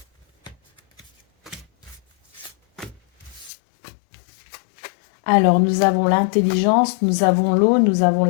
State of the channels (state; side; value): drops out; right; at 3.5 s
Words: Alors, nous avons l'intelligence, nous avons l'eau, nous avons